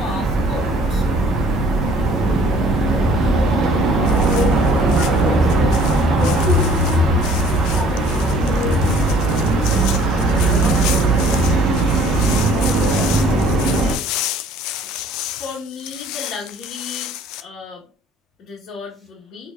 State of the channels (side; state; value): both; normal; correlation 0.55